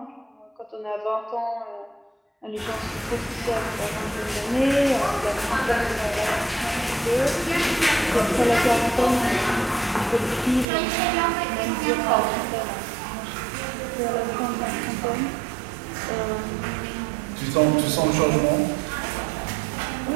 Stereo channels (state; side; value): drops out; left; at 10.7 s